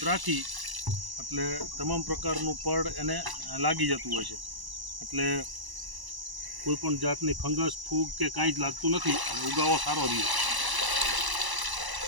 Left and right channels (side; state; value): left; late; 1.0 ms